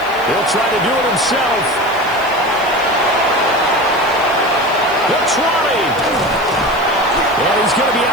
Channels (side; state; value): right; noise; hiss, 22 dB below the sound